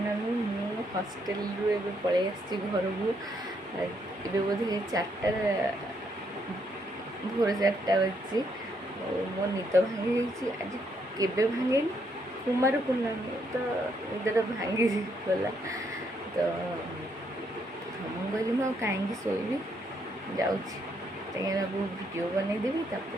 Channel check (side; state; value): both; normal; correlation 0.74